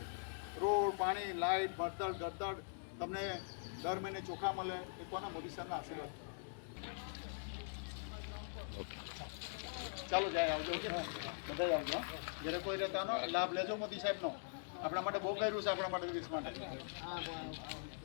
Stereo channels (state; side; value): silent; right; digital silence